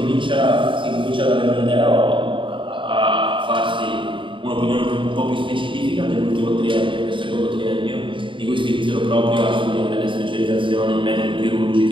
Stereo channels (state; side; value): late; left; 0.24 ms